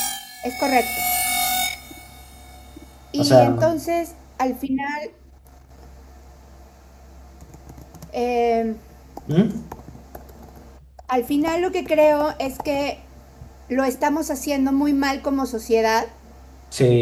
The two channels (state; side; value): identical; both; correlation 1.00